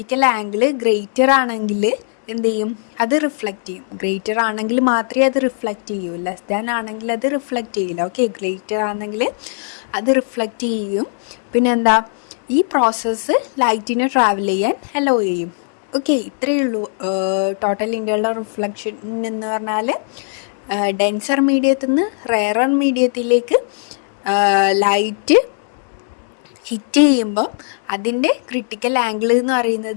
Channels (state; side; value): silent; right; 61 dB below the other